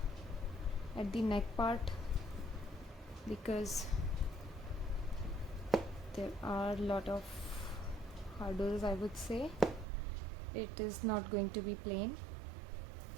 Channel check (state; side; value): drops out; left; at 9.9 s